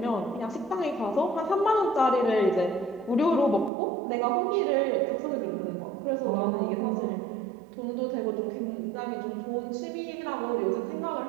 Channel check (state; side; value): drops out; left; at 3.7 s